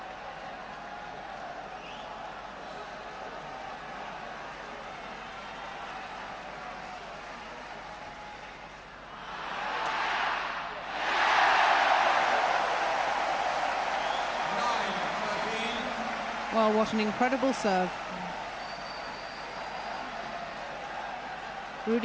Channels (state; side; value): identical; both; correlation 1.00